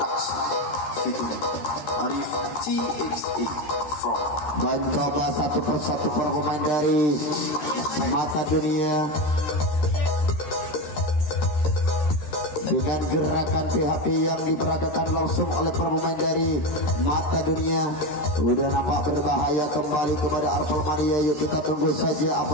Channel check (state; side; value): late; right; 13 ms